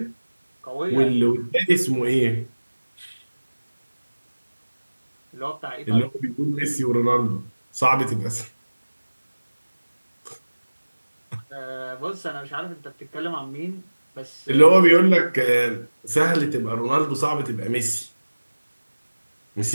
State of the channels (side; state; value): both; inverted; correlation -1.00